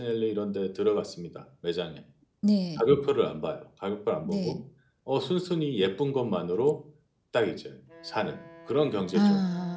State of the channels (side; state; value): both; identical; correlation 1.00